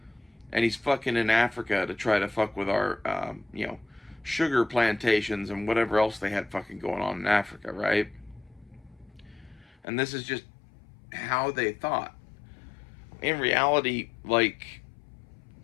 and he's fucking in Africa to try to fuck with our sugar plantations and whatever else they had fucking going on in Africa, right? And this is just how they thought. In reality,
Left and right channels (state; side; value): drops out; right; at 9.8 s